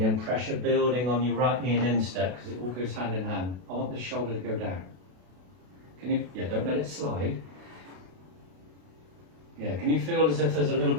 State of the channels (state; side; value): late; left; 32 ms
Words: and pressure building on your right knee and instep, because it all goes hand in hand. I want the shoulder to go down. Can you, yeah, don't let it slide. Yeah, can you feel as if there's a little